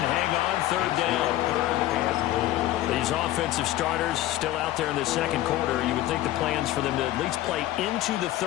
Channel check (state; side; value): quieter; right; 14.8 dB